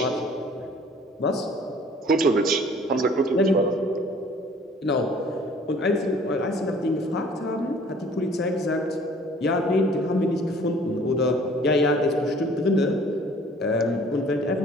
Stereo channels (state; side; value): normal; both; correlation 0.53